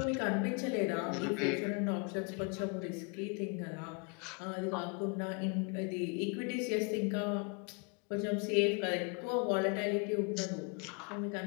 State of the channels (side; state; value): right; quieter; 35.0 dB